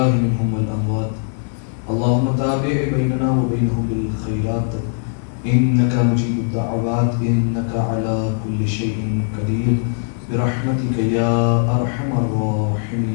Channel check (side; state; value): right; silent; digital silence